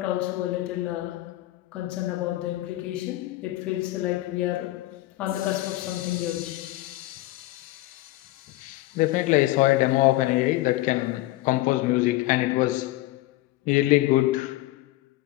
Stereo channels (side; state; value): right; quieter; 17.5 dB